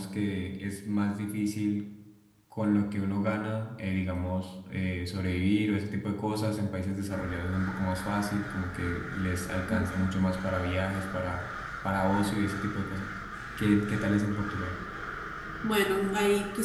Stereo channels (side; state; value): both; identical; correlation 1.00